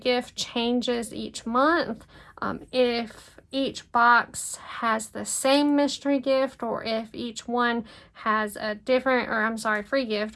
changes each month, if each box has the same mystery gift, or if each one has a different, free gift,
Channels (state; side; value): identical; both; correlation 1.00